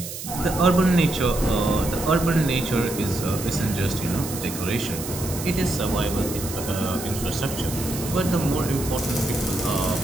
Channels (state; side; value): noise; right; hiss, 9 dB below the sound